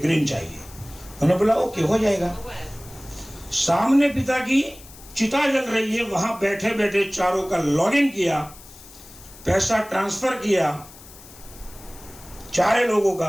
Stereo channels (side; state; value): left; noise; hiss, 20 dB below the sound